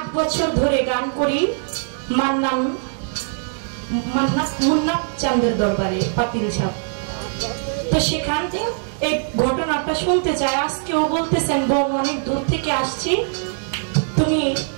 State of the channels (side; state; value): left; silent; digital silence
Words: বছর ধরে গান করি মুন্না চাঁদের দরবারে পাতিলঝাপ। তো সেখান থেকে এই ঘটনাটা শুনতে চায়। আজকেও বলতেছেন বোন অনেক দূর থেকে আসছি, তুমি